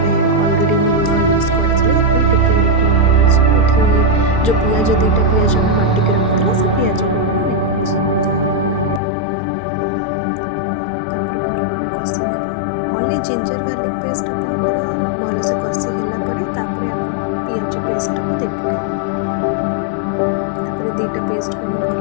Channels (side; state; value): right; drops out; at 9.0 s